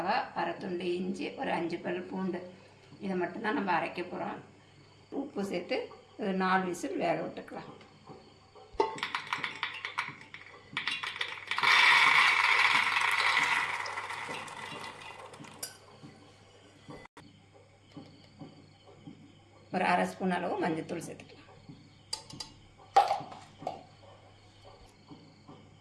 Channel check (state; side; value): identical; both; correlation 1.00